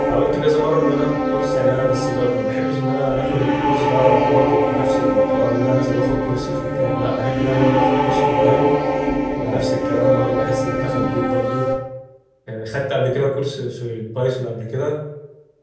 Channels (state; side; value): identical; both; correlation 1.00